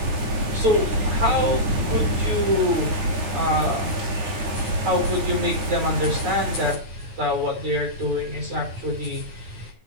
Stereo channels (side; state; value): left; late; 9.6 ms